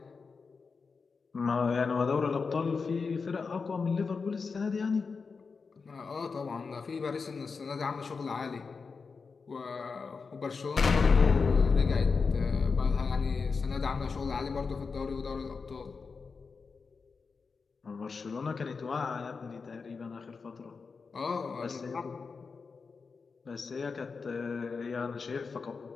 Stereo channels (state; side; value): quieter; right; 4.9 dB